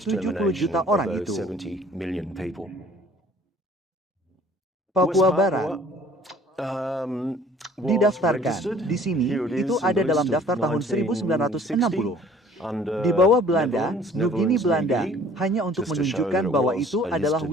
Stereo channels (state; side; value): normal; both; correlation 0.53